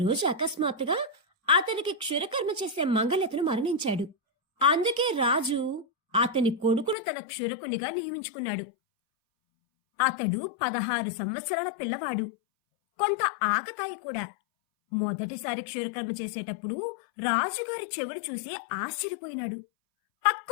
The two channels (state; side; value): drops out; right; at 7.0 s